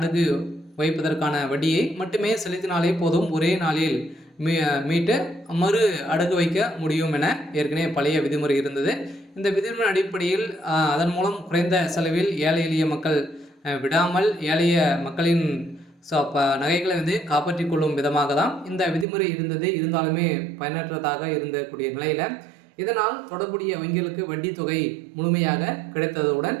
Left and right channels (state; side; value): drops out; left; at 19.1 s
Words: வைப்பதற்கான வட்டியை மட்டுமே செலுத்தினாலே போதும், ஒரே நாளில் மீட்டு மறு அடகு வைக்க முடியும் என ஏற்கனவே பழைய விதிமுறை இருந்தது. இந்த விதிமுறை அடிப்படையில் அதன் மூலம் குறைந்த செலவில் ஏழை எளிய மக்கள் விடாமல் ஏழைய மக்களின் ஸோ அப்போ நகைகளை வந்து காப்பாற்றி கொள்ளும் விதமாக தான் இந்த விதிமுறை இருந்தது. இருந்தாலுமே பயனற்றதாக இருந்தக்கூடிய நிலையில் இதனால் தொடர்புடைய வங்கிகளுக்கு வட்டி தொகை முழுமையாக கிடைத்ததுடன்